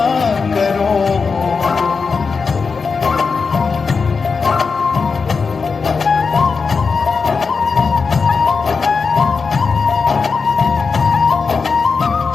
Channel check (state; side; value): quieter; right; 5.0 dB